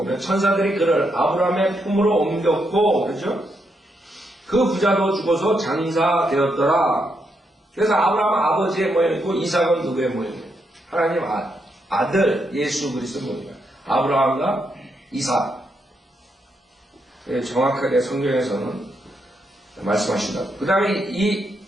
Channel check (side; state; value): both; normal; correlation 0.80